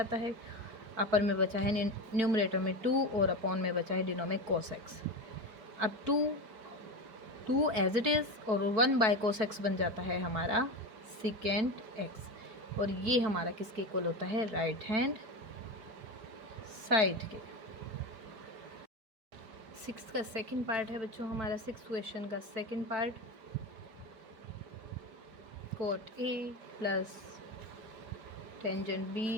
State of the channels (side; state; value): left; late; 4.6 ms